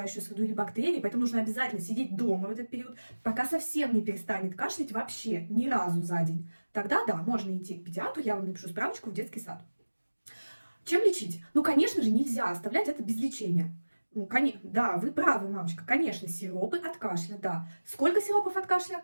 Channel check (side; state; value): both; inverted; correlation -1.00